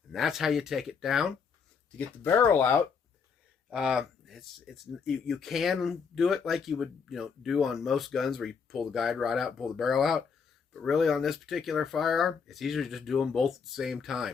And that's how you take it down. To get the barrel out, you can do it like you would do on most guns, where you pull the guide rod out and pull the barrel out. But really, on this particular firearm, it's easier to just do them both at the same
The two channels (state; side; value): quieter; right; 6.0 dB